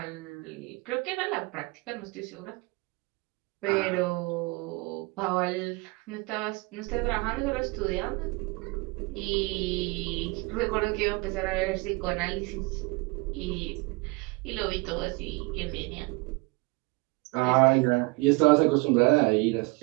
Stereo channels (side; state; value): left; quieter; 25.9 dB